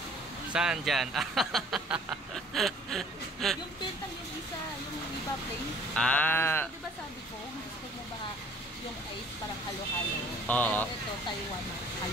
Saan dyan? Yung pentang yung isa, yung iba plain. Ah. Gusto, diba sabi ko, gusto mo ba yung ice parang halo-halo? Oo. Pero ito, Taiwan,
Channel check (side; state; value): both; normal; correlation 0.53